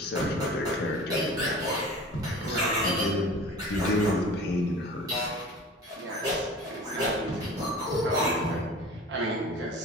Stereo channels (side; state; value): both; normal; correlation 0.40